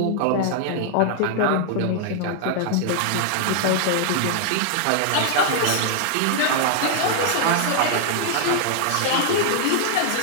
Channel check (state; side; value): different; both; correlation 0.00